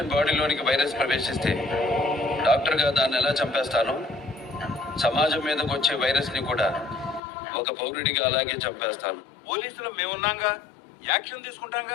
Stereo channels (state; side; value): drops out; right; at 7.2 s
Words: బాడీలోనికి వైరస్ ప్రవేశిస్తే డాక్టర్గా దాన్ని ఎలా చంపేస్తానో సమాజం మీదకి వచ్చే వైరస్ ని కూడా ఒక పౌరుడిగా అలాగే చంపేస్తాను. పోలీసులు మేమున్నాంగా, యాక్షన్